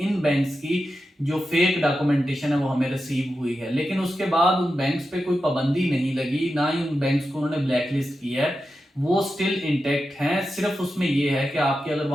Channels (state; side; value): normal; both; correlation 0.90